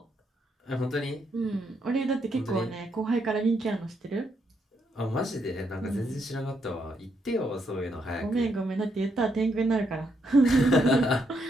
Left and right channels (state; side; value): normal; both; correlation 0.77